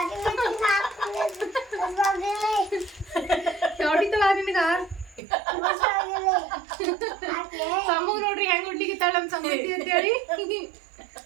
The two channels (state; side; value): drops out; left; at 5.2 s